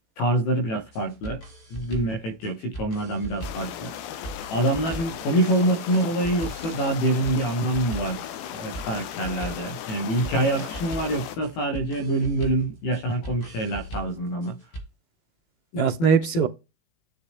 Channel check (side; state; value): right; late; 18 ms